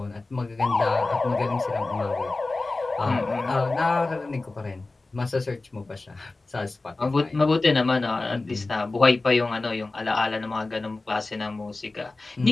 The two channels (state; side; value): quieter; right; 3.3 dB